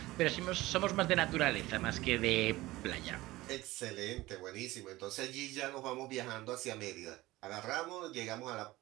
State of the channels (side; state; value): left; quieter; 18.5 dB